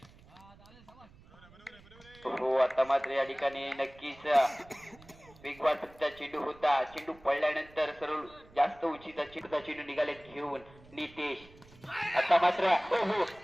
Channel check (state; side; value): noise; right; rumble, 24 dB below the sound